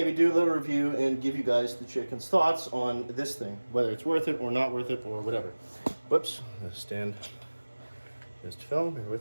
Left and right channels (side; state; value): both; inverted; correlation -1.00